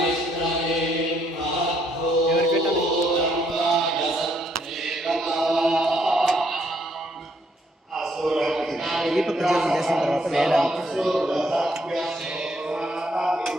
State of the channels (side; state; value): both; normal; correlation 0.70